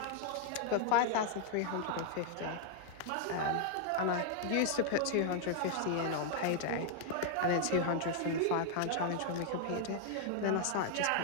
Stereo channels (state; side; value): different; both; correlation -0.01